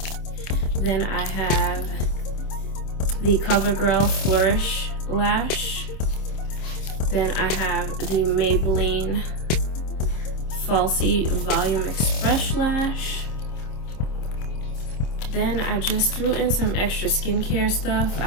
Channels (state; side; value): late; right; 26 ms